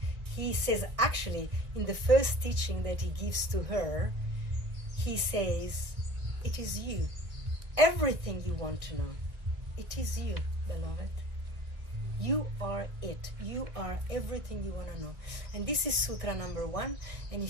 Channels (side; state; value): left; late; 1.6 ms